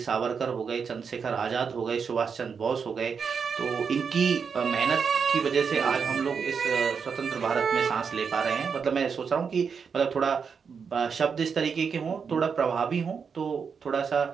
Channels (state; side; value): quieter; left; 6.1 dB